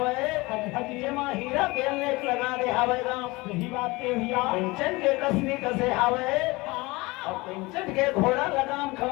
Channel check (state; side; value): quieter; right; 23.0 dB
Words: जे मां हीरा के लेख लगा दे आवे तो यही बात के भैया कंचन के कसनी कसे आवे और पिंचट के घोड़ा लगाम